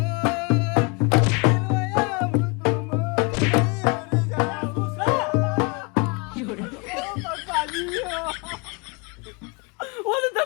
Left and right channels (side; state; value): right; quieter; 30.7 dB